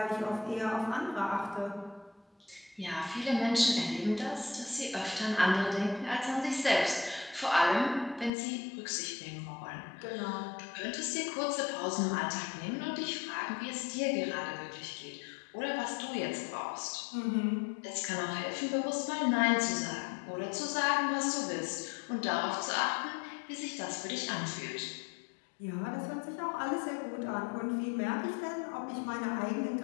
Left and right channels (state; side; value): drops out; right; at 8.3 s